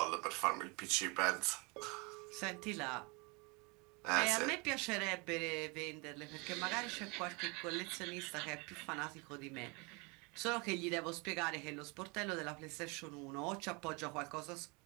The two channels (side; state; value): left; quieter; 29.4 dB